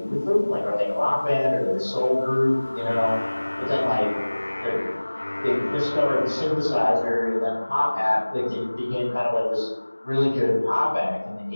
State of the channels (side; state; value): both; inverted; correlation -1.00